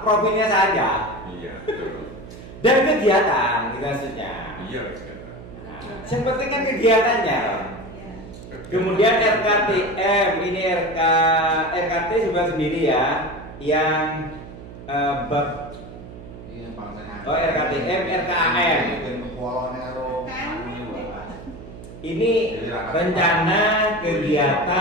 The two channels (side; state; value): right; noise; hum, 15 dB below the sound